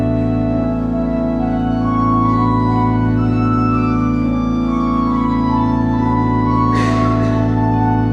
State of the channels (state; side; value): identical; both; correlation 1.00